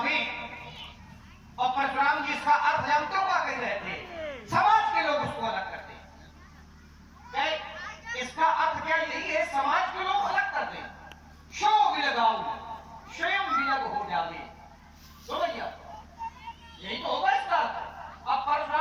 और परशुराम जी इसका अर्थ जानते हो क्या कह रहे थे? समाज के लोग उसको अलग करते हैं। इसका अर्थ क्या यही है, समाज के लोग अलग करते हैं। शो विल गाऊ, स्वयं विलग हो जावे। तो भैया यही तो होगा इसका अर्थ। अब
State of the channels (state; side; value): identical; both; correlation 1.00